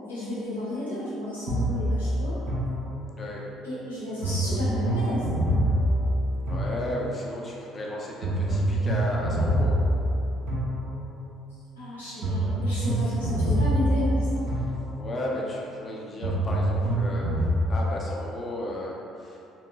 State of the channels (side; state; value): both; normal; correlation 0.70